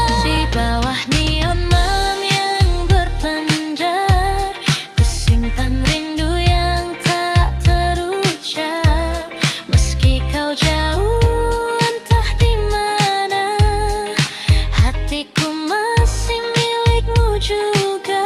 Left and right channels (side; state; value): both; identical; correlation 1.00